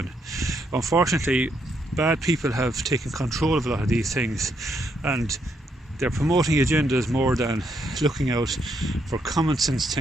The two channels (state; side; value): normal; both; correlation 0.76